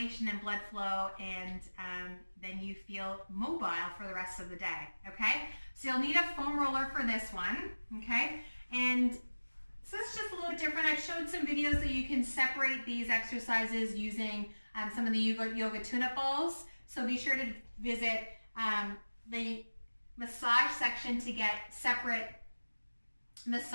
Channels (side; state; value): both; inverted; correlation -1.00